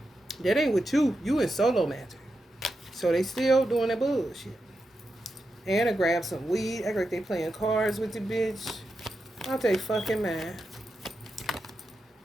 That ain't with you. You in solo magic. So they still doing that bullshit. And I grab some weed. Act like they playing cards with the bitch. Out they fucking mind.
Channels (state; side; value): normal; both; correlation 0.88